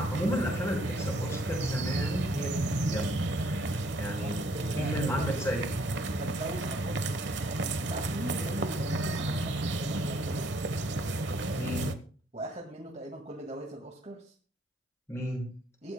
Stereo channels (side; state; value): both; normal; correlation 0.65